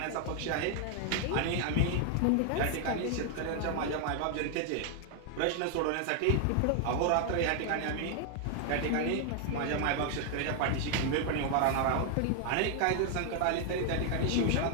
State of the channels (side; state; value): both; different; correlation 0.00